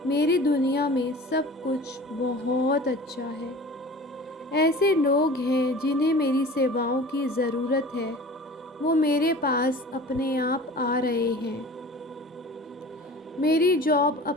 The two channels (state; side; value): normal; both; correlation 0.40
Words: मेरी दुनिया में सब कुछ बहुत अच्छा है। ऐसे लोग हैं जिन्हें मेरी सेवाओं की ज़रूरत है, वो मेरे पास अपने आप आ रहे हैं। मेरी जॉब